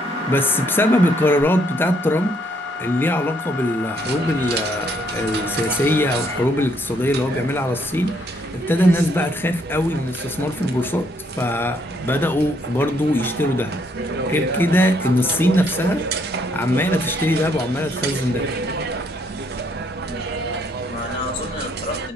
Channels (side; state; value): both; normal; correlation 0.70